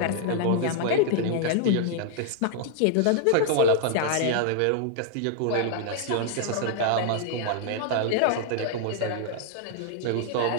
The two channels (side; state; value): both; different; correlation -0.01